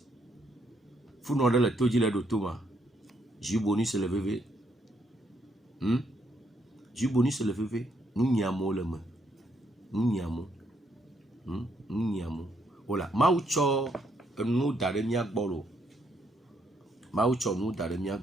funɔ ɖe le to dzi le ɖo to ma jus bonus le veve jus bonus le veve nu nyiamo le me nu nyiamo wola mawu tsɔ enu da ɖe mia gbɔ lo mawu tsɔ nu da ɖe mia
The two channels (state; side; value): normal; both; correlation 0.73